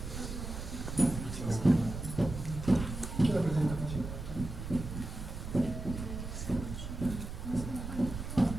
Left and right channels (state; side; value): noise; right; rumble, 7 dB below the sound